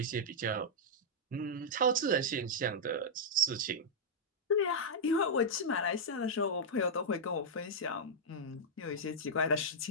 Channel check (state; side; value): normal; both; correlation -0.07